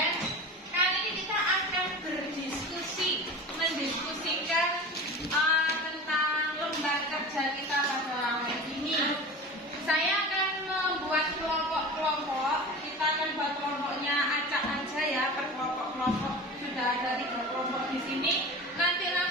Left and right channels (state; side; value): normal; both; correlation 0.33